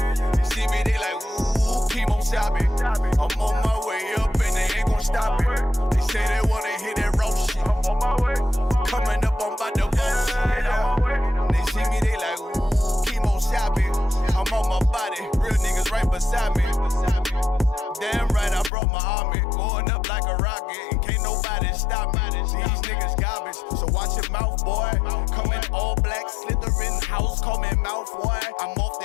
You see me, they like, ooh, keep on shopping. I'm on my way up and they ain't gon' stop it. They say they wanna hear that raw shit. Coming up, I'm about to bullshit. They see me, they like, ooh, keep on shopping. I'm on my body, real niggas right beside me. Damn right, I brought my army. Going up like a rocket, and can't nobody stop me. These niggas garbage, so watch your mouth, boy. Coming all black, slithering house, call me mouth, boy. I'm off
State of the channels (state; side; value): drops out; right; at 18.7 s